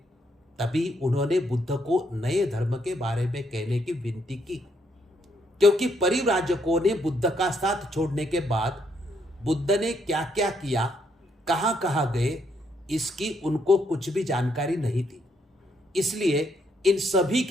उन्होंने बुद्ध को नए धर्म के बारे में कहने की विनती की, क्योंकि परिव्राजकों ने बुद्ध का साथ छोड़ने के बाद बुद्ध ने क्या क्या किया, कहां कहां गए, इसकी उनको कुछ भी जानकारी नहीं थी। इसलिए इन सभी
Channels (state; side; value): normal; both; correlation 0.73